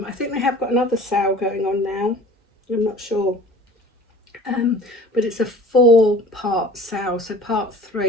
think they have got another sale going on now. I'm not sure. But it's a 4-part sale. So part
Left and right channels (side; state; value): both; normal; correlation 0.45